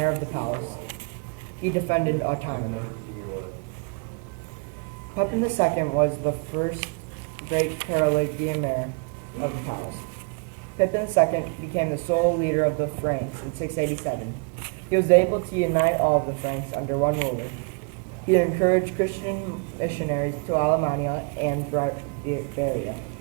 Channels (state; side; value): quieter; left; 34.7 dB